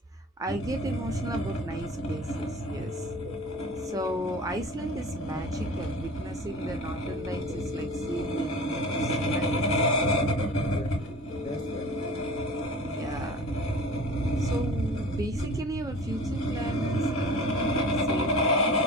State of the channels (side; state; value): both; normal; correlation 0.40